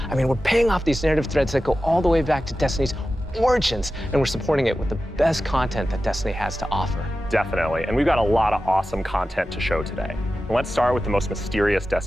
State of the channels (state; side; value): normal; both; correlation 0.93